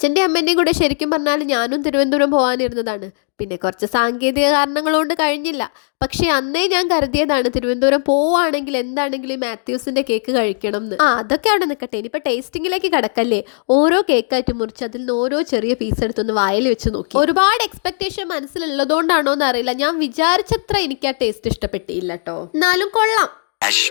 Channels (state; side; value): silent; right; digital silence